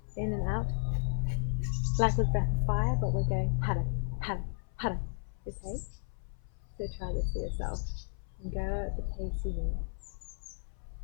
in and out like with breath of fire, but we're going hada, hada, hada. Okay? So try this for yourself and go at the pace you need.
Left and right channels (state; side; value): silent; right; 55 dB below the other